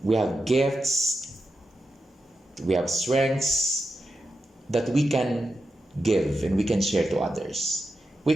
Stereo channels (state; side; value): normal; both; correlation 0.89